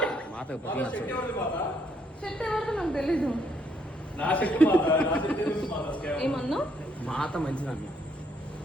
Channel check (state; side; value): normal; both; correlation 0.71